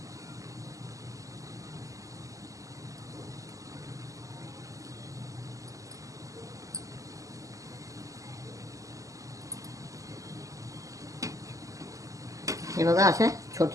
हे बघा, अशा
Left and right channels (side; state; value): left; late; 0.16 ms